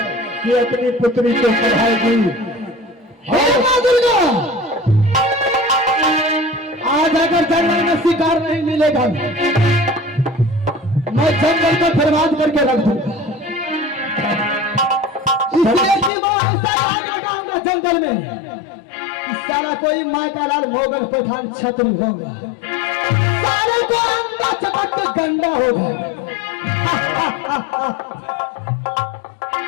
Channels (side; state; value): right; drops out; at 16.1 s